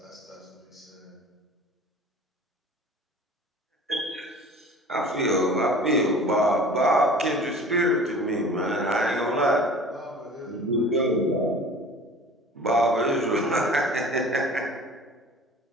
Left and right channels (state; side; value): normal; both; correlation 0.43